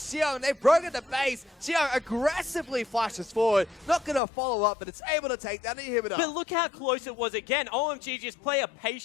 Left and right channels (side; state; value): right; drops out; at 4.2 s